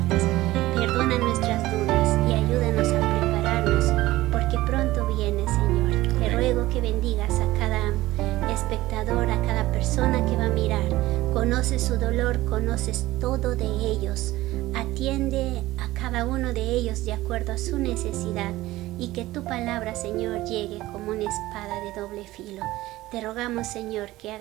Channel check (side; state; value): left; quieter; 17.2 dB